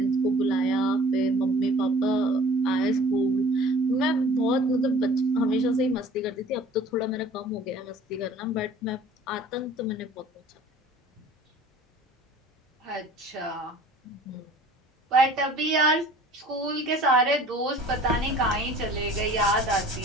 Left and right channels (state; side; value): normal; both; correlation 0.48